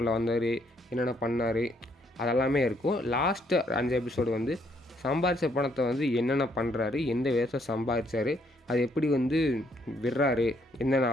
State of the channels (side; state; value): both; normal; correlation 0.70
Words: வந்தார், என்னென்ன பண்ணார் அதெல்லாமே இருக்கும். லாஸ்ட்டு 5 எபிசோடு வந்து சம்பாதிச்ச பணத்தை வந்து என்னென்ன பண்ணுறாரு, எந்த விதத்தில் சம்பாதிச்சார், அது எப்படி வந்து விடுறாரு, என்னென்ன